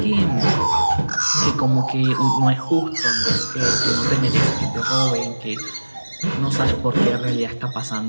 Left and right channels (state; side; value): inverted; both; correlation -1.00